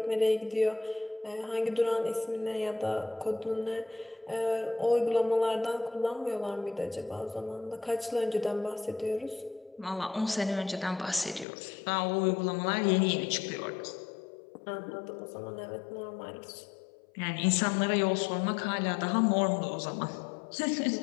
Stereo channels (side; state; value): right; drops out; at 11.5 s